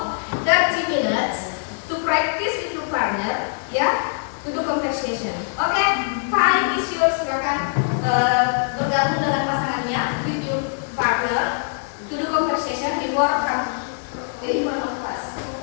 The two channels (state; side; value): silent; right; digital silence